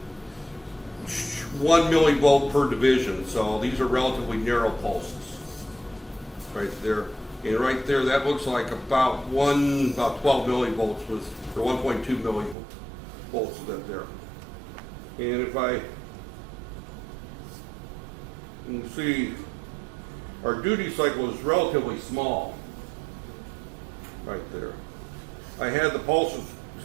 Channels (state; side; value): drops out; left; at 12.6 s